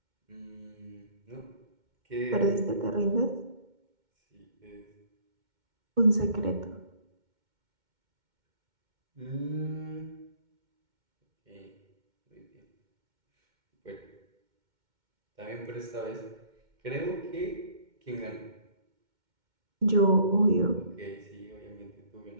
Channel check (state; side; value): late; left; 2.1 ms